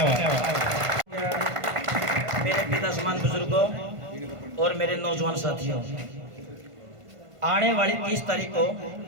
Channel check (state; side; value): late; left; 1.5 ms